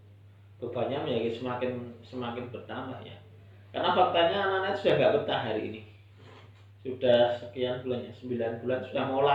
bebannya menjadi semakin bertambah ya, karena faktanya anak-anak sudah nggak betah hari ini, sudah sekian bulan ya, 9 bulan sudah mau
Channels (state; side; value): identical; both; correlation 1.00